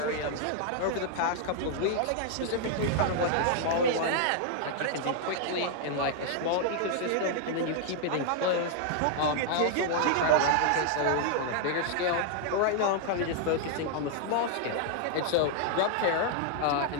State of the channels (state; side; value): different; both; correlation 0.00